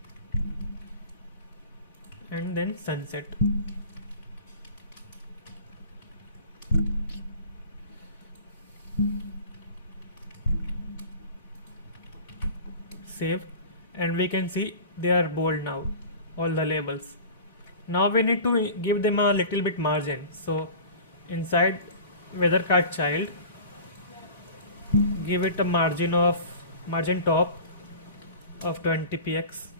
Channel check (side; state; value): both; inverted; correlation -0.39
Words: and then sunset. Save, and we can see they are bold now, all the labels. Now we need to give them a little bit margin. So inside weather card child, give it a margin top of 20 px